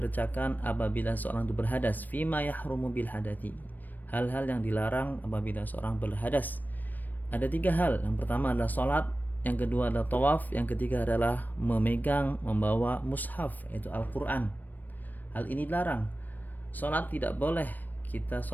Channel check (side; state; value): right; late; 0.087 ms